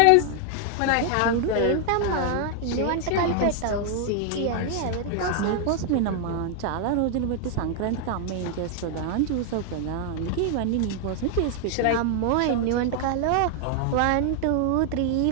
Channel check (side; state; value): both; different; correlation 0.00